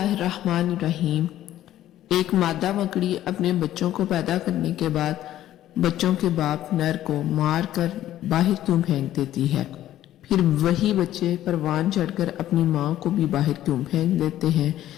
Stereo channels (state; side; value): quieter; right; 13.0 dB